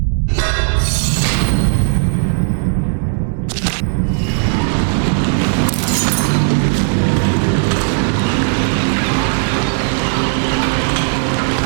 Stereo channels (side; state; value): left; silent; digital silence